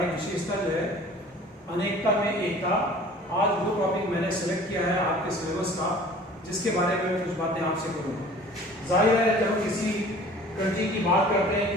विशेषता जो है अनेकता में एकता। आज वो टॉपिक मैंने सेलेक्ट किया है आपके सिलेबस का, जिसके बारे में मैं कुछ बातें आपसे करूँगा। जाहिर है जब हम किसी कंट्री की बात करते हैं,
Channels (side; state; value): both; normal; correlation 0.47